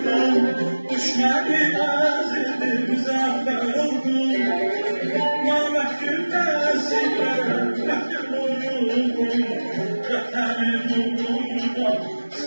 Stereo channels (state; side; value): inverted; both; correlation -1.00